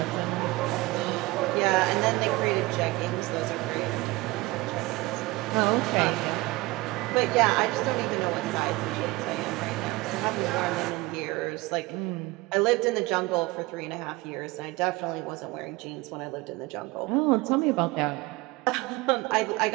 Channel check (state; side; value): quieter; left; 21.6 dB